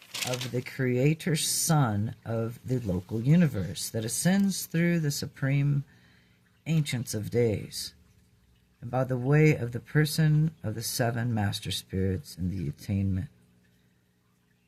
of the Creator Son of the local universe that ascends through the supreme ancients of days, and by the way of the person of the 7 master spirits in the attainment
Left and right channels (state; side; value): identical; both; correlation 1.00